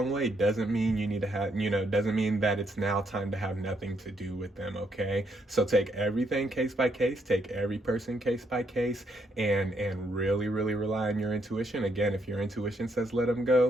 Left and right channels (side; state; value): both; normal; correlation 0.75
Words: way doesn't mean you need to have, doesn't mean that it's now time to have nothing to do with them, okay? So take everything case by case, take every person case by case, and really, really rely on your intuition. Again, if your intuition says let them